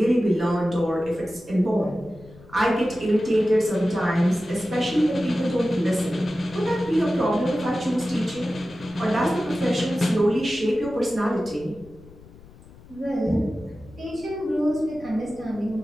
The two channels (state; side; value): noise; left; rumble, 22 dB below the sound